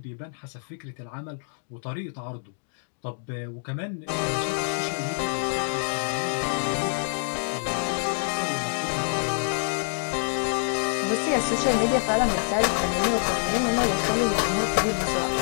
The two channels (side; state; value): right; silent; digital silence